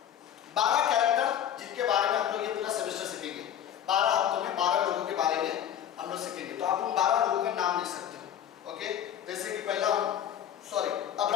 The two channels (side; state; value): right; quieter; 10.1 dB